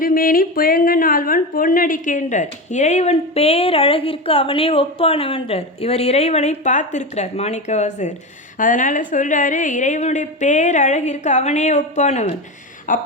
புயங்கன் ஆழ்வான் பொன்னடிக்கின்றார். இறைவன் பேரழகிற்கு அவனே ஒப்பானவன்றார். இவர் இறைவனை பார்த்துருக்கிறார் மாணிக்கவாசகர். அதனால் சொல்கிறாரு, இறைவனுடைய பேரழகிற்கு அவனே ஒப்பானவன்.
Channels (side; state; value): both; normal; correlation 0.20